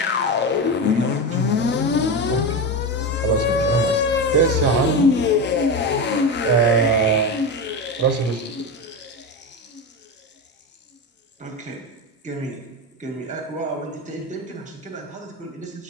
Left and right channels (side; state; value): both; normal; correlation 0.19